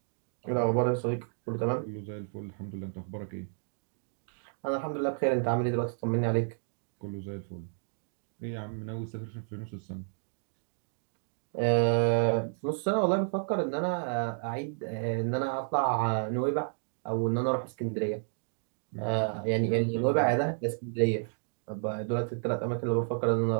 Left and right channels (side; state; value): left; silent; digital silence